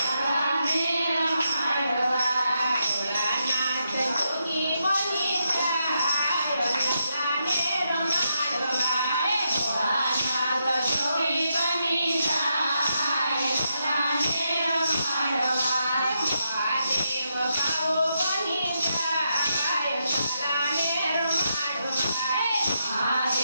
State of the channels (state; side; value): inverted; both; correlation -0.82